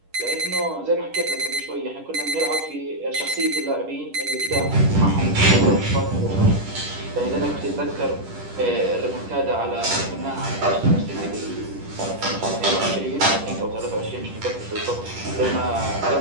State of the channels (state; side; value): late; left; 10 ms